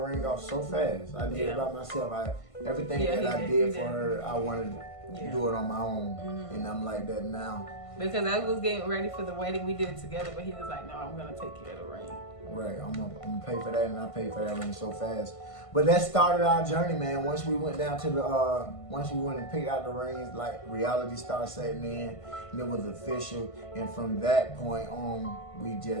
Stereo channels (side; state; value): right; late; 1.5 ms